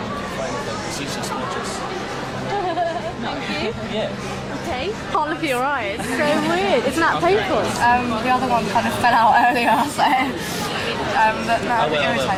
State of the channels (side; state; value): both; identical; correlation 1.00